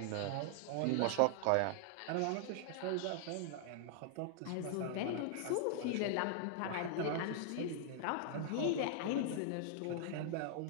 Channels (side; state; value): both; different; correlation -0.01